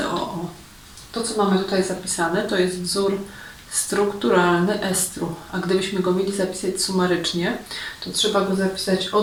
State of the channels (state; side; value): identical; both; correlation 1.00